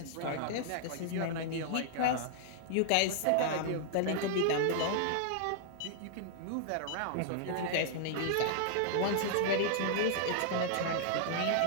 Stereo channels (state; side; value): different; both; correlation -0.01